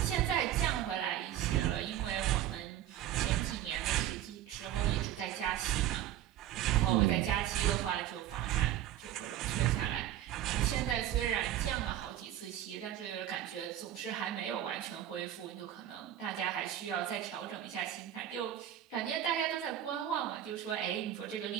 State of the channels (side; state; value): left; quieter; 11.9 dB